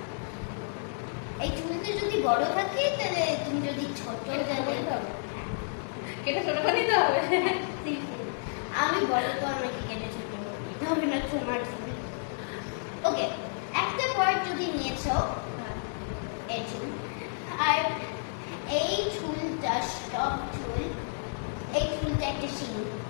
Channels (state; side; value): silent; right; digital silence